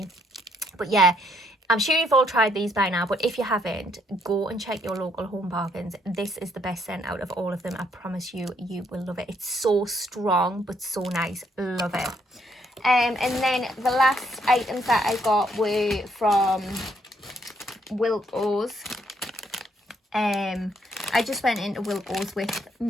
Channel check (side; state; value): both; normal; correlation 0.70